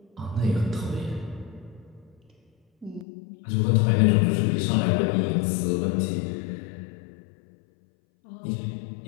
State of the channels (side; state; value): right; drops out; at 3.1 s